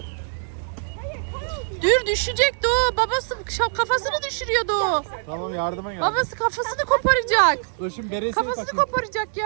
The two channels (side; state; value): left; silent; digital silence